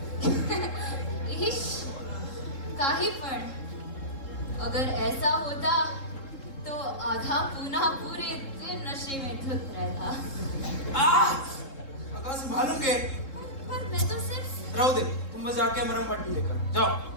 इश्क काही पण, अगर ऐसा होता तो आधा पूना पूरे दिन नशे में धुत रहता। अगर संभालूंगे। पर मैं तो सिर्फ रहो दे, तुम बस जाके मरहम पट्टी लेकर जाओ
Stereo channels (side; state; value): right; late; 3.7 ms